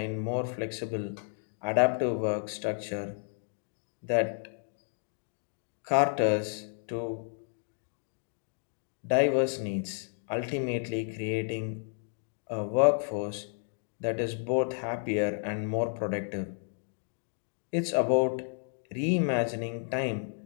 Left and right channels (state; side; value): silent; right; 57 dB below the other